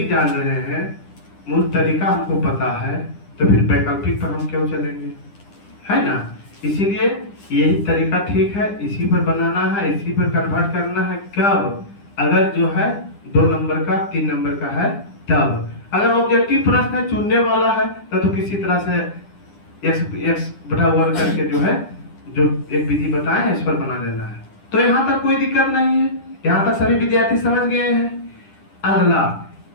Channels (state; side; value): late; right; 9.9 ms